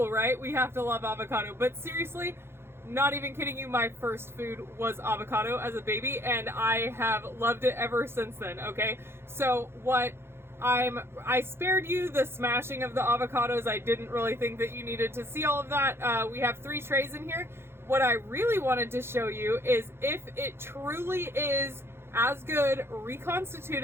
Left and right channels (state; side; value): late; left; 0.12 ms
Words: right? We have to love avocado, but seriously, not even kidding you, my first food was avocado as a baby, and I have loved it ever since then, okay? So I spared you the smashing of the avocados. I didn't really think that you needed to see all of that. We have 3 trays in here. What I really wanted to show you is if it truly is as good